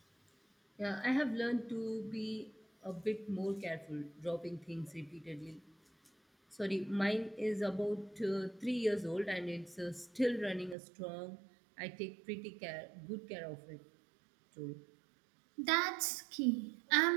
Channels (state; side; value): drops out; left; at 10.8 s